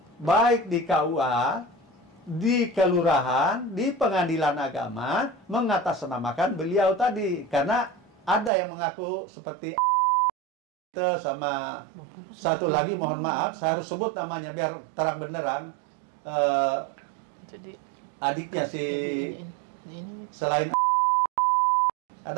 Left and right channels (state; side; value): drops out; left; at 8.5 s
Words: baik di KUA, di kelurahan, di pengadilan agama, mengatasnamakan beliau tadi. Karena ada yang mengaku seperti sama satu lagi, mohon maaf, saya harus sebut namanya biar terang benderang. Adiknya si selain